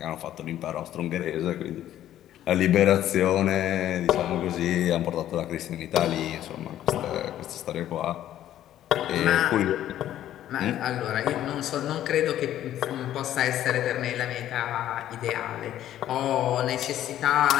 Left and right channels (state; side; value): quieter; right; 12.2 dB